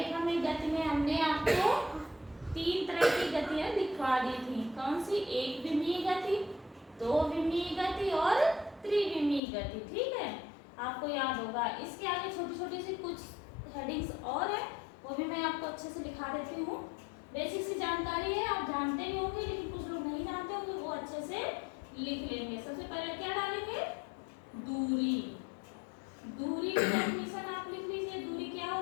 में गति में हमने आपको 3 तरह की गतियां दिखा दी थी। कौन सी? एक विमीय गति, दो विमीय गति और त्रिविमीय गति। ठीक है, आपको याद होगा। इसके आगे छोटी छोटी सी कुछ हेडिंग्स और है, वो भी मैं आपको अच्छे से लिखा देती हूँ। बेसिक सी जानकारी है, आप जानते भी होंगे, लेकिन कुछ लोग नहीं जानते होंगे, वो अच्छे से लिख लेंगे। सबसे पहले क्या डालेंगे? दूरी। दूरी की डेफिनेशन आप लिख लीजिए। दूरी क्या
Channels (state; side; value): drops out; right; at 9.4 s